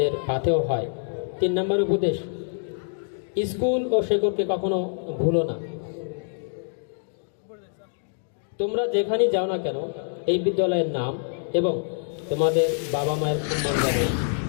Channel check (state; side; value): silent; right; digital silence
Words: পাথেও হয়। 3 নম্বর উপদেশ, স্কুল ও শেকড়কে কখনো ভুলো না। তোমরা যেখানেই যাও না কেন, এই বিদ্যালয়ের নাম এবং তোমাদের বাবা মায়ের সম্মান যেন